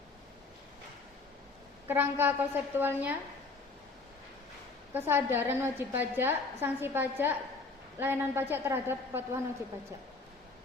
Kerangka konseptualnya, kesadaran wajib pajak, sanksi pajak, layanan pajak terhadap kepatuhan wajib pajak.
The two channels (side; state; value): right; quieter; 3.8 dB